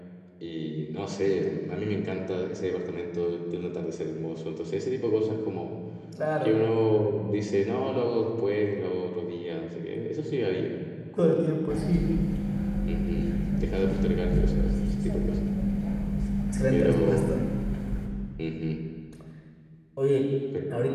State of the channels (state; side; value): identical; both; correlation 1.00